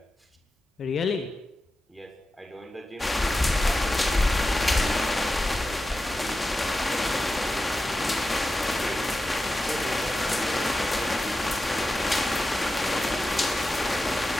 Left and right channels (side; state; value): both; normal; correlation 0.93